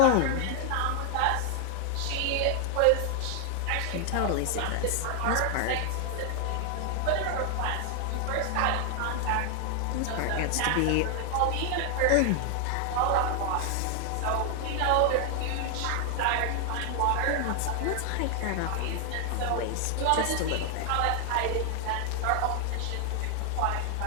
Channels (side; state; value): both; different; correlation 0.00